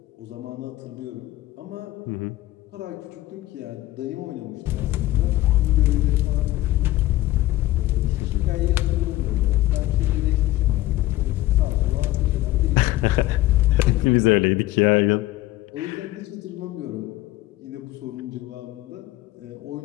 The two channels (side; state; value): right; quieter; 16.6 dB